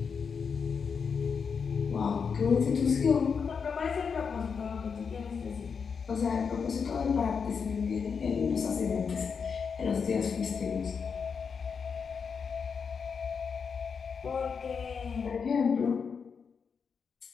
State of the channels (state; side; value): quieter; right; 6.0 dB